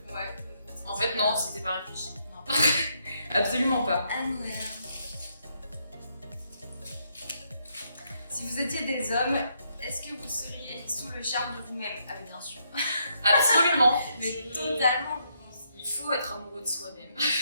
Ouais. En fait, non, c'était pas réfléchi. Non. Absolument pas. Ah merde. Si vous étiez des hommes, est-ce que vous seriez sous le charme de vous-même? Ah, bien sûr. Absolument. Mais totalement. Il faut être amoureux de soi-même.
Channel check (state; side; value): inverted; both; correlation -0.76